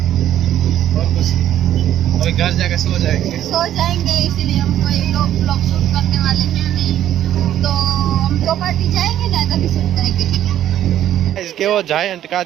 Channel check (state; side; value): quieter; left; 11.7 dB